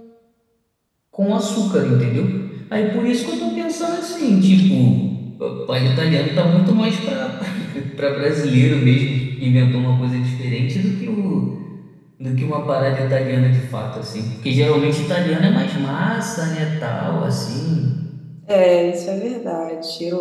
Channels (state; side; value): identical; both; correlation 1.00